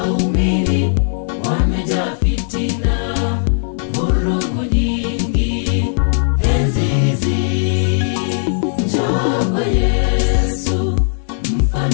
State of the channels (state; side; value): silent; right; 66 dB below the other